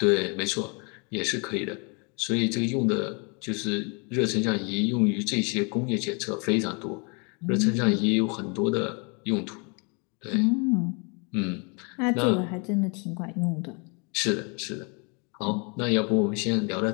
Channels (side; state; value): right; quieter; 33.7 dB